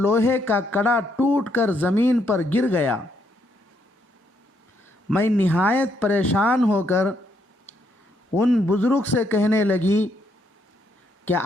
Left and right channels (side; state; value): both; normal; correlation 0.74